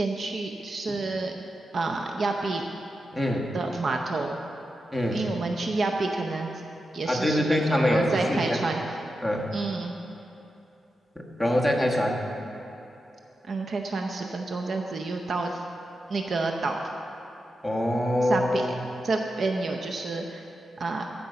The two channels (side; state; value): both; normal; correlation 0.89